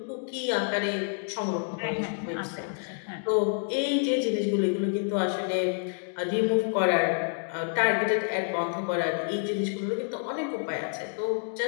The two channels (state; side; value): silent; right; 57 dB below the other